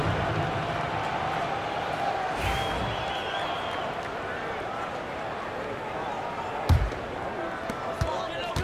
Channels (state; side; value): identical; both; correlation 1.00